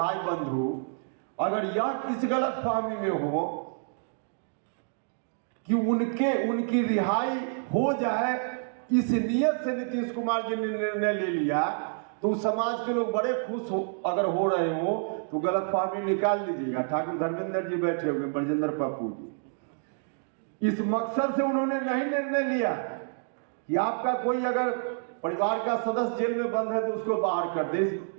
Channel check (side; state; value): left; silent; digital silence